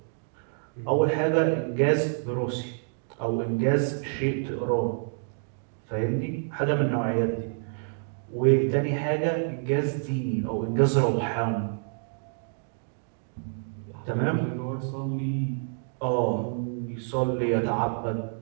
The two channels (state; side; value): silent; left; digital silence